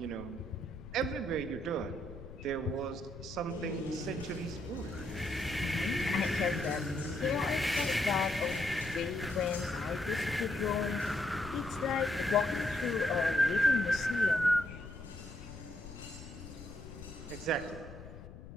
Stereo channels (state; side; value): noise; left; rumble, 14 dB below the sound